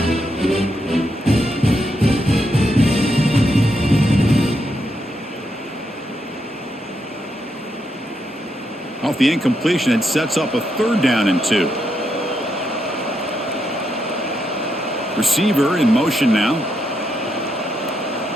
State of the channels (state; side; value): normal; both; correlation 0.81